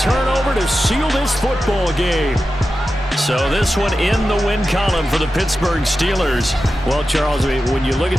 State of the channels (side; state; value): both; normal; correlation 0.92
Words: turnover to seal this football game. So this one in the win column for the Pittsburgh Steelers. Well, Charles, I mean, when you look at